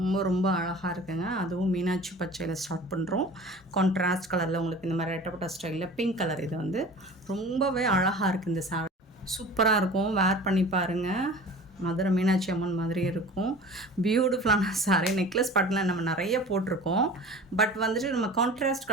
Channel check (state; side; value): normal; both; correlation 0.40